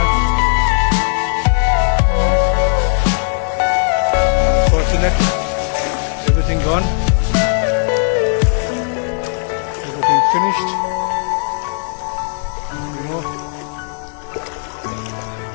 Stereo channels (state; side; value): silent; right; 61 dB below the other